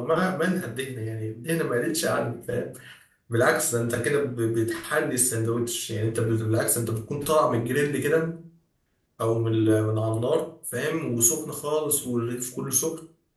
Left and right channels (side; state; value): both; identical; correlation 1.00